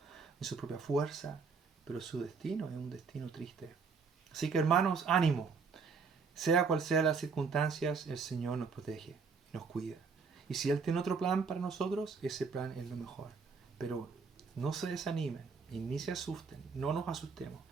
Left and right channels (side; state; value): left; quieter; 5.2 dB